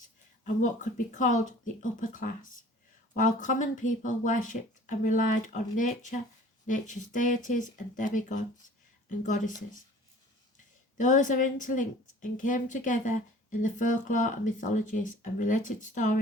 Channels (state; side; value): normal; both; correlation 0.48